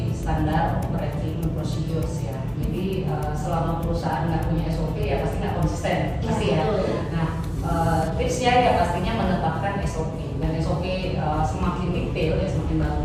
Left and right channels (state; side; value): identical; both; correlation 1.00